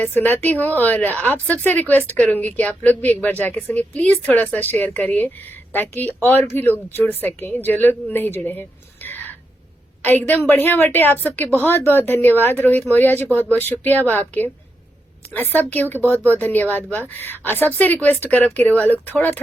सुनाती हूँ। और आप सबसे रिक्वेस्ट करूंगी कि आप लोग भी एक बार जाके सुनिए। प्लीज थोड़ा सा शेयर करिए ताकि और भी लोग जुड़ सकें जो लोग नहीं जुड़े हैं। एकदम बढ़िया बटे। आप सबके बहुत बहुत धन्यवाद। रोहित मौर्य जी, बहुत बहुत शुक्रिया बा आपके। सब केहू के बहुत बहुत धन्यवाद बा। सबसे रिक्वेस्ट करब कि रउआ लोग थोड़ा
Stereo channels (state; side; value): normal; both; correlation 0.84